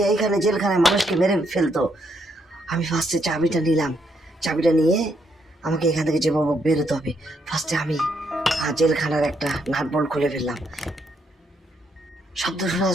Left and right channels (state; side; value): normal; both; correlation 0.75